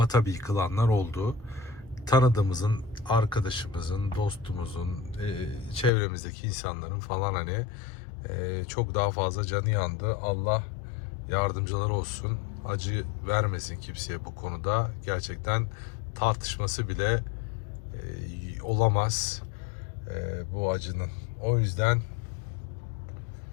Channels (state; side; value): drops out; right; at 5.9 s